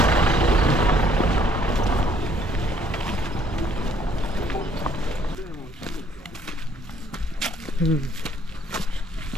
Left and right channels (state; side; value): normal; both; correlation 0.64